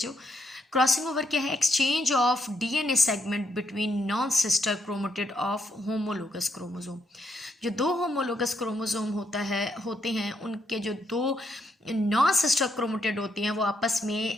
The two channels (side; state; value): both; normal; correlation 0.77